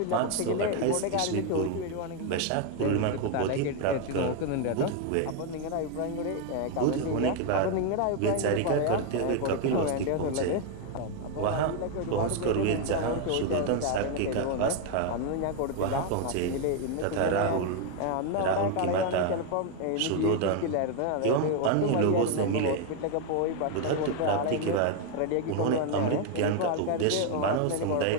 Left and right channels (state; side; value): different; both; correlation 0.01